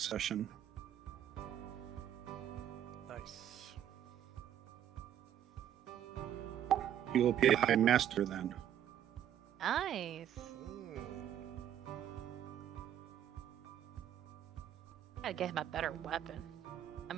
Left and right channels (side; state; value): left; quieter; 10.5 dB